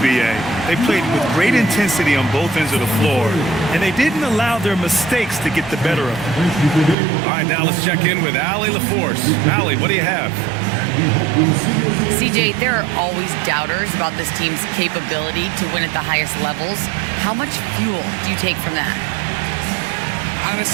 B.A. They played with great intensity on both ends of the floor, and they didn't allow their mistakes to get the better of them. All right, now let's check in with Allie LaForce. Allie, what do you have? CJ, there are always doubters about this team's capability to win at the highest levels. How much fuel do you take from that?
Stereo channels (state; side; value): drops out; left; at 7.0 s